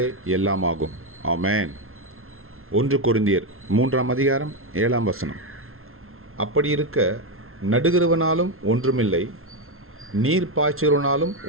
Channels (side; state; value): left; late; 0.62 ms